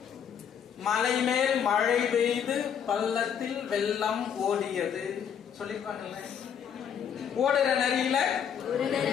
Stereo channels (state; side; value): quieter; right; 8.1 dB